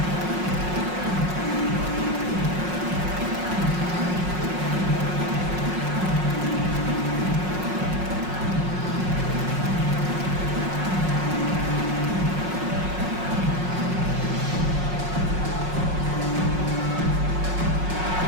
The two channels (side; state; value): left; late; 5.5 ms